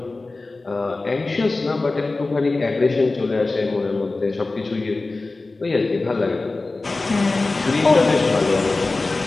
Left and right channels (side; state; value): right; quieter; 3.4 dB